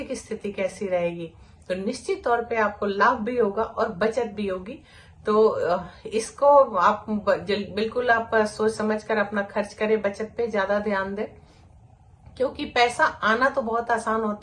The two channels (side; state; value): both; identical; correlation 1.00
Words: स्थिति कैसी रहेगी, तो निश्चित तौर पे आपको लाभ भी होगा और बचत भी होगी। तो इसको आप बिल्कुल आप सोच समझ कर अपना खर्च करें, बचत पे ज्यादा ध्यान दें, क्योंकि पैसा आना तो बहुत आसान